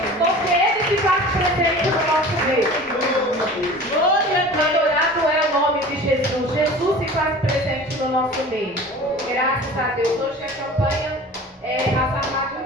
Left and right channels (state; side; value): normal; both; correlation 0.40